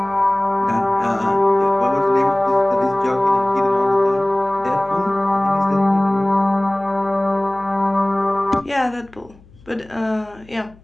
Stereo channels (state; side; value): noise; left; hum, 26 dB below the sound